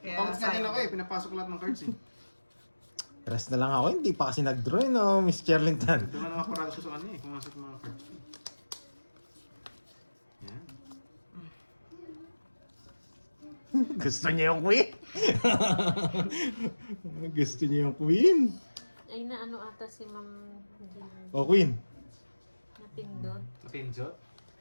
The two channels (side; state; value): both; inverted; correlation -1.00